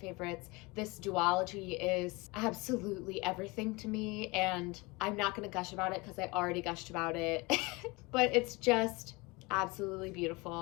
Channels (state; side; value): quieter; right; 25.0 dB